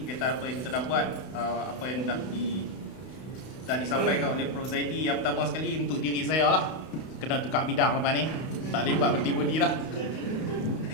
kita apa yang kita dah buat, apa yang dah disampaikan oleh Prof Zaidi. Yang pertama sekali untuk diri saya lah, kena tukar bidang lepas ni, tak boleh buat berhenti lah.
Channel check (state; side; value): late; right; 32 ms